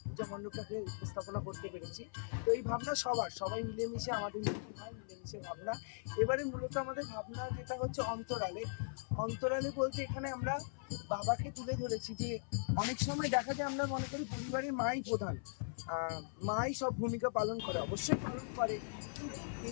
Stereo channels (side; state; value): right; silent; 51 dB below the other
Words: পূজা মণ্ডপটাকে উপস্থাপনা করতে পেরেছি। তো এই ভাবনা সবাই মিলেমিশে আমাদের মিটিং হয়, মিলেমিশে ভাবনা। এবারে মূলত আমাদের ভাবনা যেটা হচ্ছে অন্তরালে বলতে এখানে আমরা বাবাকে তুলে ধরেছি। যে অনেক সময় দেখা যায় আমরা মনে করি পরিবারের মাই প্রধান, মাই সব ভূমিকা পালন করে, অবশ্যই পালন করে, কিন্তু